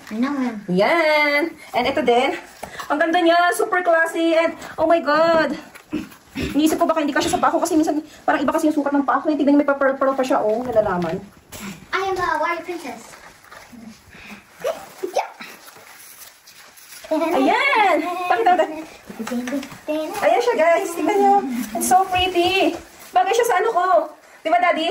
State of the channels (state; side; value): identical; both; correlation 1.00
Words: No. Yan! And ito din. Ang ganda niya. Super classy. And, oh my God! Iniisip ko baka hindi kasi sa paa ko kasi minsan parang iba kasi yung sukat ng paa ko. Tignan niyo, may pa-pearl pa siya, oh. Nalalaman. I am the warrior princess. Ayan! Pakita mo. Ayan siya, guys. Tignan niyo. It's so pretty. Bagay siya sa ano ko. Di ba,